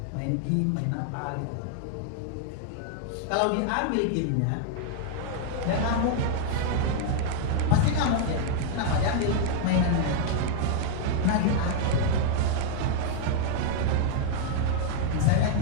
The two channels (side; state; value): both; different; correlation 0.00